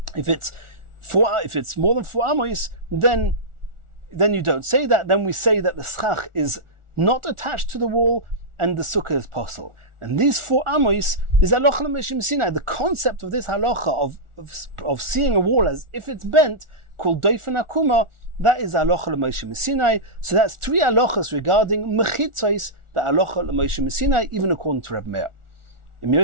If it's more than 4 amos, then you don't say that. Then we say that the schach is not attached to the wall and the sukkah is posel. And these 4 amos is halacha l'Moshe Sinai. The concept of this halacha of seeing a wall as if it's bent, called doifen akuma, that is halacha l'Moshe Sinai. So that's 3 halachas regarding mechitzos, the halacha l'Moshe Sinai, even according to Reb Meir. In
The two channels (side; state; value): left; late; 1.4 ms